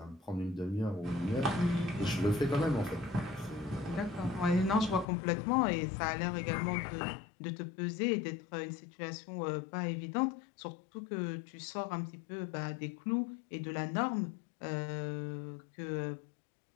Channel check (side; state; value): right; drops out; at 5.1 s